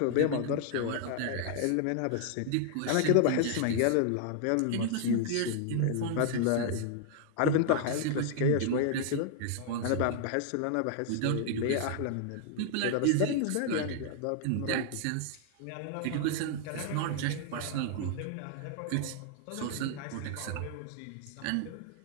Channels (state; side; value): different; both; correlation -0.01